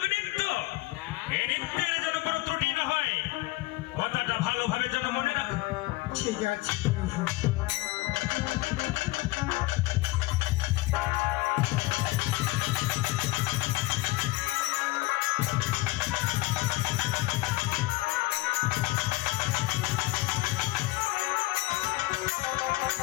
নৃত্য। এই নৃত্যের যেন কোনো ত্রুটি না হয়, কথাটা ভালোভাবে যেন মনে রাখো। ঠিক আছে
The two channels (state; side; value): quieter; right; 19.9 dB